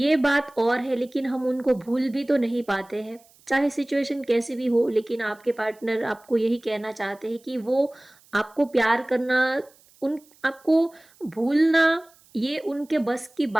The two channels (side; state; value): right; noise; hiss, 29 dB below the sound